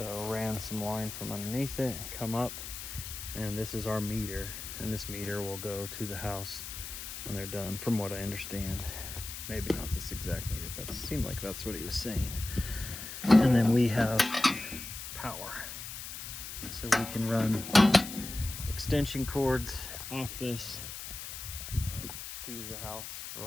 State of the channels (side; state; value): left; noise; hiss, 9 dB below the sound